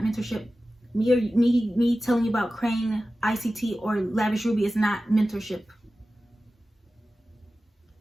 mentorship. Me telling you about Crane, ICT, or Lavish Ruby is not mentorship.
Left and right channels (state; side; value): normal; both; correlation 0.95